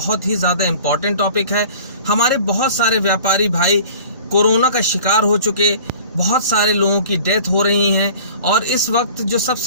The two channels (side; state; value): both; inverted; correlation -0.45